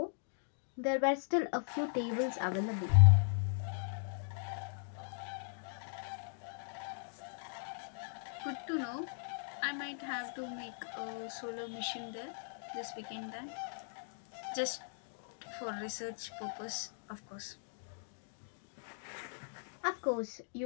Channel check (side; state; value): right; silent; digital silence